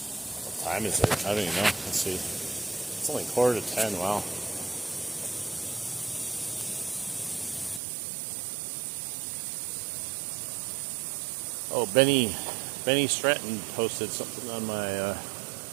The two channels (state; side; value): drops out; left; at 7.8 s